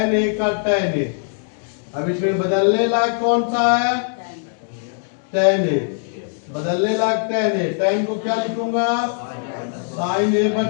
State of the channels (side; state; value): right; silent; digital silence